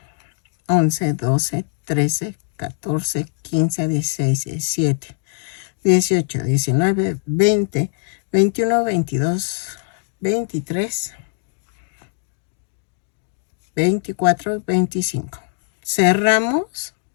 11, 12, 13, 14, 15, 16, 17, 18, 19, 20, 21, 22, 23, 24, 25. Cerramos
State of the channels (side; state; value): right; silent; 59 dB below the other